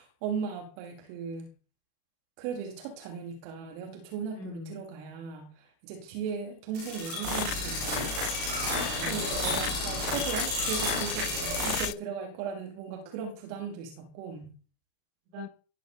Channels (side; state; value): left; late; 37 ms